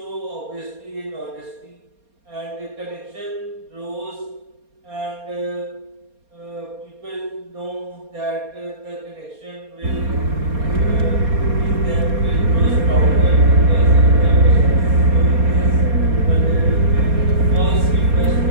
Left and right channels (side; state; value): left; late; 4.3 ms